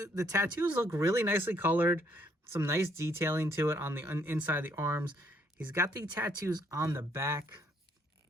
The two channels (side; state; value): both; normal; correlation 0.68